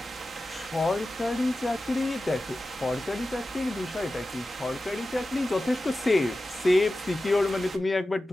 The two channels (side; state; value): both; normal; correlation 0.94